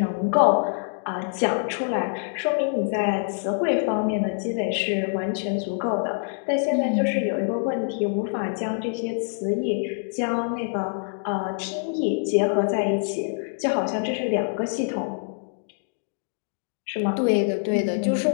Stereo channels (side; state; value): right; silent; digital silence